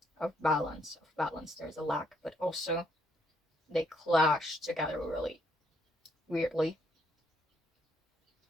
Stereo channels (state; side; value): normal; both; correlation 0.71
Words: Of balance. There's a lack, but also they clash together really weirdly.